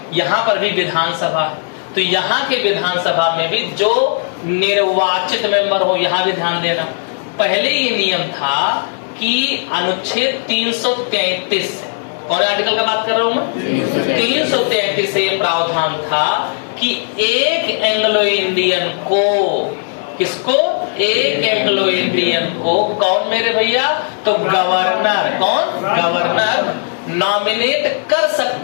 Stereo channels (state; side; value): silent; right; digital silence